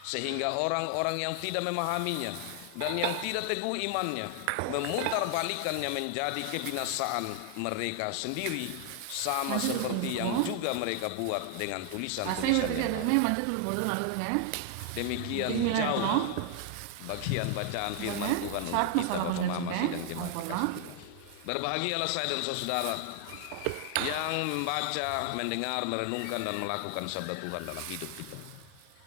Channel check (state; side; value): different; both; correlation 0.00